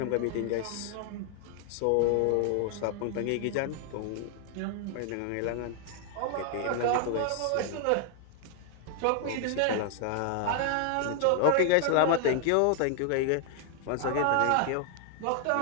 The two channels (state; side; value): different; both; correlation 0.00